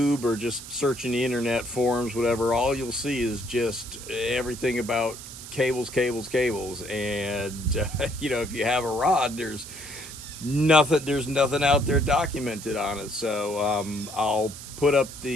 or just searching the internet forums, whatever, all you'll see is just everything about cables, cables, cables. And you know, if you have a rod, there's nothing out there documented on it. So I'll put up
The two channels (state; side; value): noise; right; hiss, 13 dB below the sound